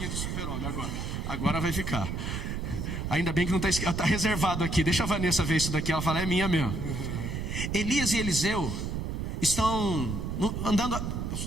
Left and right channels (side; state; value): right; noise; rumble, 3 dB below the sound